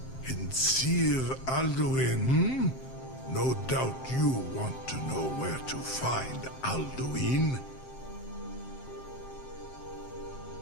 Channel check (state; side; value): late; right; 7.6 ms